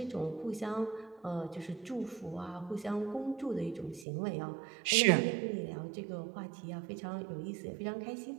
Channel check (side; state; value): left; drops out; at 4.0 s